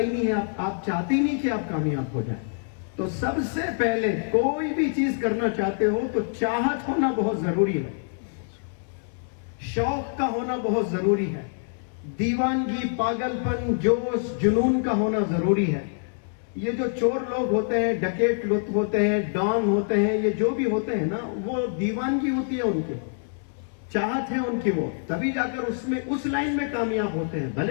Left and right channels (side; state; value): right; silent; 61 dB below the other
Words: نہیں ہے، آپ چاہتے ہی نہیں کہ آپ کامیاب ہو جائیں۔ تو سب سے پہلے کوئی بھی چیز کرنا چاہتے ہو تو چاہت ہونا بہت ضروری ہے، شوق کا ہونا بہت ضروری ہے، دیوانگی، پاگل پن، جوش، جنون کا ہونا ضروری ہے۔ یہ جو چور لوگ ہوتے ہیں، ڈکیٹ لوگ ہوتے ہیں، ڈان ہوتے ہیں، یہ جو بھی ہوتے ہیں نا، وہ دیوانگی ہوتی ہے ان کی، چاہت ہے ان کی، وہ تبھی جا کر اس لائن میں کامیاب ہوتے ہیں۔